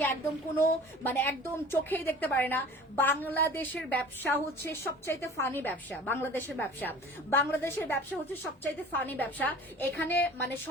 একদম কোনো মানে একদম চোখেই দেখতে পারে না। বাংলাদেশের ব্যবসা হচ্ছে সবচাইতে ফানি ব্যবসা, বাংলাদেশের ব্যবসা হচ্ছে সবচাইতে ফানি ব্যবসা। এখানে মানে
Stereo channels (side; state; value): both; normal; correlation 0.43